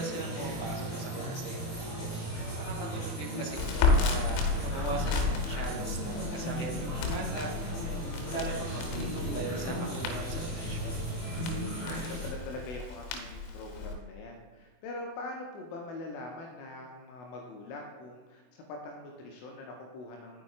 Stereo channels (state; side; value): late; right; 24 ms